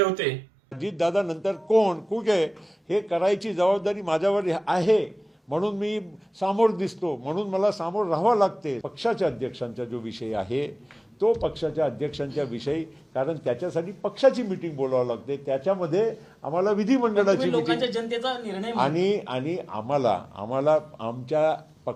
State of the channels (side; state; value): both; normal; correlation 0.98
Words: होते. अजितदादा नंतर कोण कुठे हे करायची जबाबदारी माझ्यावर आहे, म्हणून मी सामोर दिसतो, म्हणून मला सामोर राहावं लागते. पक्षाच्या अध्यक्षांचा जो विषय आहे तो पक्षाच्या अध्यक्षांच्या विषयी, कारण त्याच्यासाठी पक्षाची मीटिंग बोलावं लागते, त्याच्यामध्ये आम्हाला विधिमंडळाची लोकांच्या जनतेचा निर्णय आणि आम्हाला आमच्या